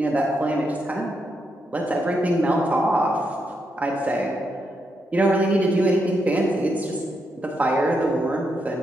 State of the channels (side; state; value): both; normal; correlation 0.81